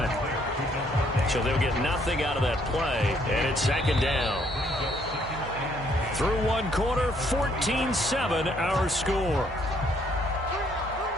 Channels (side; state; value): both; normal; correlation 0.67